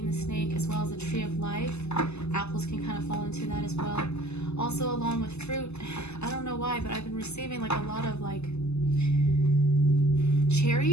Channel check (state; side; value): late; right; 0.80 ms